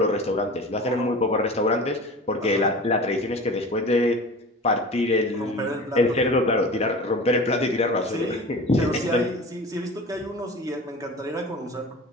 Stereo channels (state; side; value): normal; both; correlation 0.36